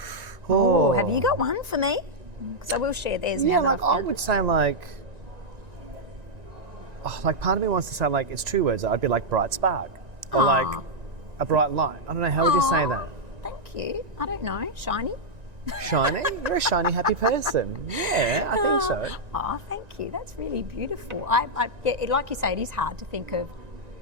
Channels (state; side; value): late; left; 1.9 ms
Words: Oh, have you got one for me? Because I will share theirs Yeah, now. that I've I found would it. say part of me wants to say it's two words. I'd be like bright spark or like a bright light. I don't know. How would you say Aw, that? Thank you. I don't know. Shiny? Shiny? You're a shiny, happy person. Yeah, I think so. Oh, thank you. That's really beautiful. Like you say, it is hard to think of